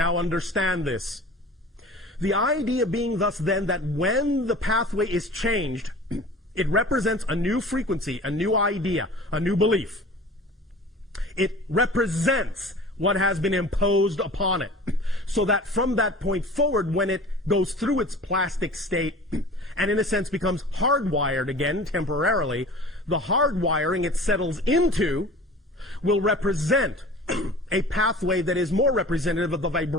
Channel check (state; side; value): normal; both; correlation 0.41